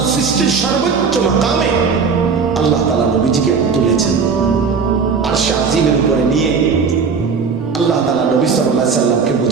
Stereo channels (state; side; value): quieter; left; 5.4 dB